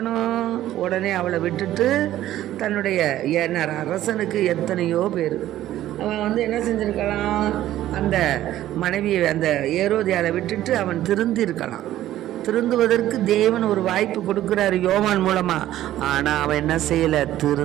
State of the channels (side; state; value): left; quieter; 13.5 dB